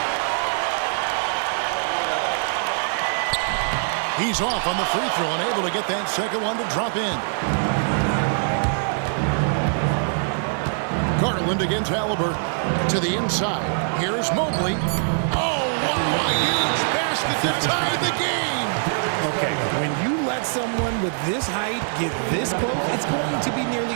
He's off on the free throw and able to get that second one to drop in. Garland against Halliburton. To the inside. Here's Mobley. Oh, wow, a huge basket to tie the game. Okay, when you let someone with this height get this close, it's going to be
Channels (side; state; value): left; silent; digital silence